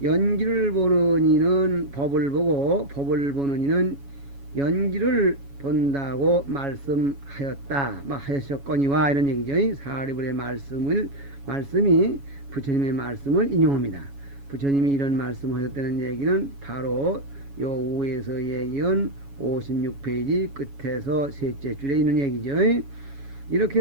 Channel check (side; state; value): left; late; 7.2 ms